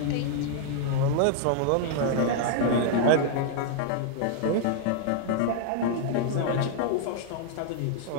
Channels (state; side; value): different; both; correlation 0.00